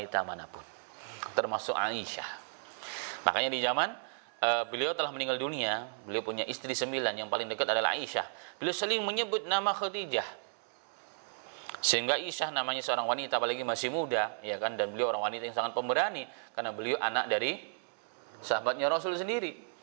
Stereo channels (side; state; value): left; silent; 55 dB below the other